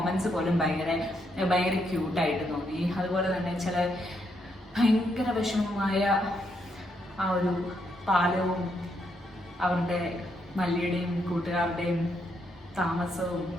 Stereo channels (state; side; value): normal; both; correlation 0.77